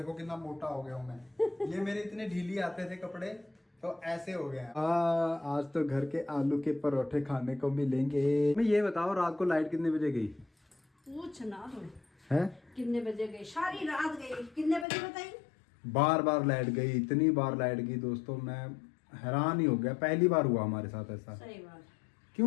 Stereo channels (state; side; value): drops out; right; at 14.9 s